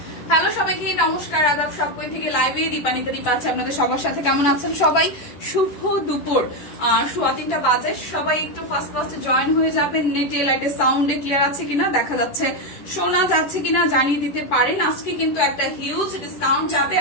Hello সবাইকে নমস্কার, আদাব। সবকই থেকে লাইভে দীপানিতা দীপা আছে আপনাদের সবার সাথে। কেমন আছেন সবাই? শুভ দুপুর, 3:15 বাজে। সবাই একটু ফার্স্ট জয়েন হয়ে যাবেন। নেটে লাইটে সাউন্ডে ক্লিয়ার আছে কিনা, দেখা যাচ্ছে, শোনা যাচ্ছে কিনা জানিয়ে দিতে পারেন। আজকে কিন্তু একটা হিউজ ডিসকাউন্ট যাবে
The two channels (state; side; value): late; right; 11 ms